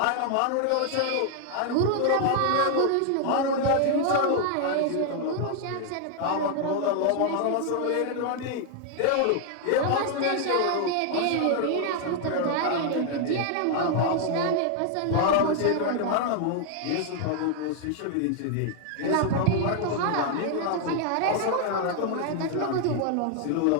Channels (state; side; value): different; both; correlation 0.00